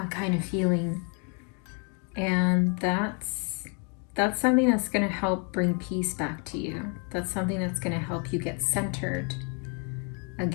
kind of feeling. And that's something that's going to help bring peace back to you. That's something that's going to help you get centered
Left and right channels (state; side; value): quieter; right; 38.0 dB